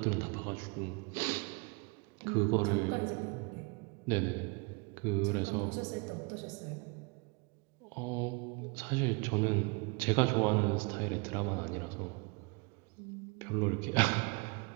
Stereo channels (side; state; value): left; quieter; 30.8 dB